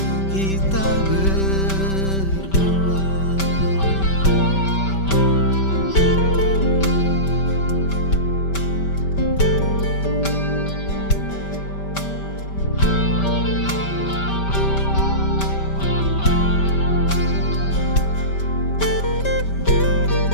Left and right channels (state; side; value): late; right; 5.1 ms